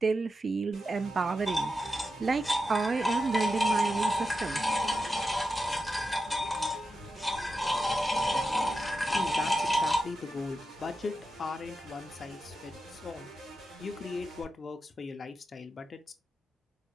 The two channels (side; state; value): both; normal; correlation 0.89